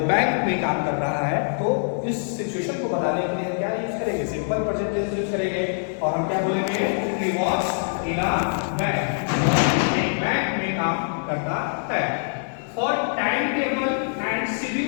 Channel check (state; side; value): silent; right; digital silence